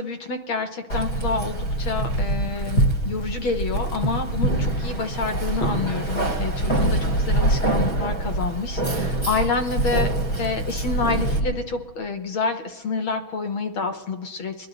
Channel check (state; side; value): late; right; 6.2 ms